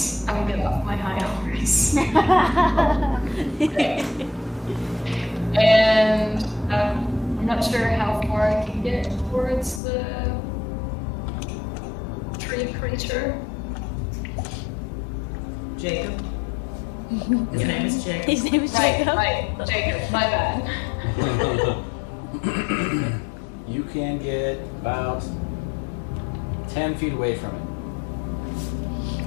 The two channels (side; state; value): right; drops out; at 9.8 s